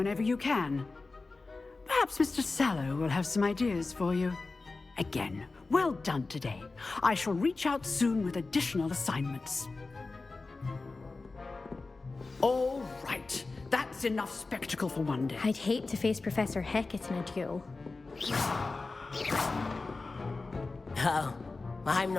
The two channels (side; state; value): right; quieter; 3.7 dB